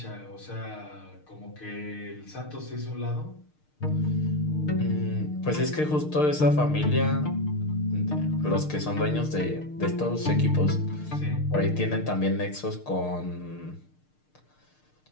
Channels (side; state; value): right; late; 6.6 ms